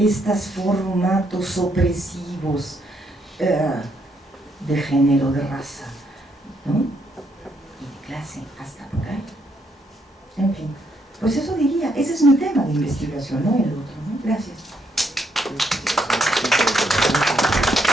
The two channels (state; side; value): normal; both; correlation 0.74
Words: formatos opresivos de género, de raza, ¿no? Y de clase, hasta por ahí. En fin, pues eso diría, ese es mi tema de investigación, no el otro, ¿no? Gracias.